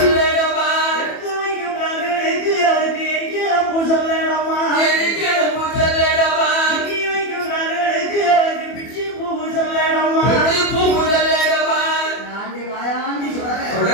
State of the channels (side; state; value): right; late; 24 ms